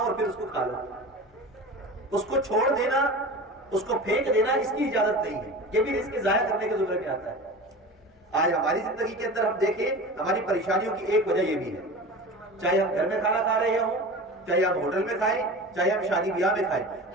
پھر اس کو کھا لو۔ اس کو چھوڑ دینا، اس کو پھینک دینا، اس کی اجازت نہیں ہے، یہ بھی رزق ضائع کرنے کے زمرے میں آتا ہے۔ آج ہماری زندگی کے اندر ہم دیکھیں، ہماری پریشانیوں کی ایک وجہ یہ بھی ہے، چاہے ہم گھر میں کھانا کھا رہے ہوں، چاہے ہم ہوٹل میں کھائیں، چاہے ہم شادی بیاہ میں کھائیں،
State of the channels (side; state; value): both; normal; correlation 0.33